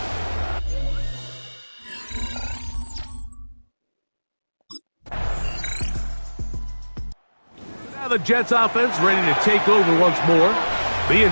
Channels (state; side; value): inverted; both; correlation -1.00